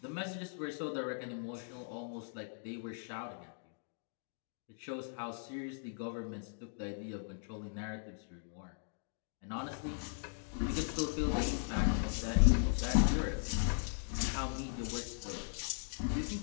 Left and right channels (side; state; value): right; silent; digital silence